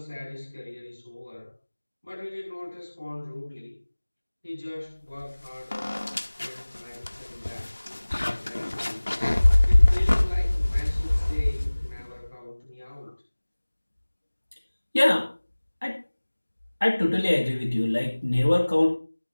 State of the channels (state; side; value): inverted; both; correlation -1.00